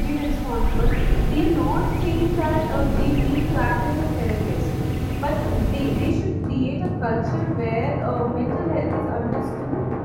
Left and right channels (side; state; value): both; identical; correlation 1.00